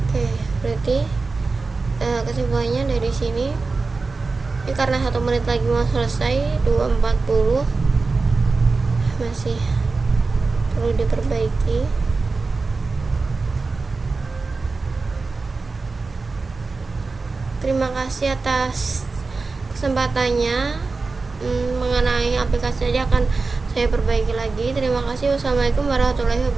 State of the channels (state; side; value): quieter; left; 4.0 dB